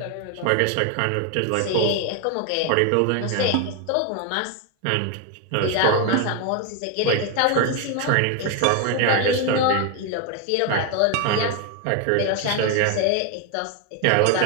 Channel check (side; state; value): both; different; correlation 0.01